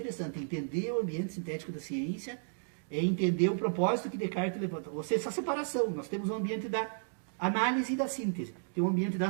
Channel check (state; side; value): silent; left; digital silence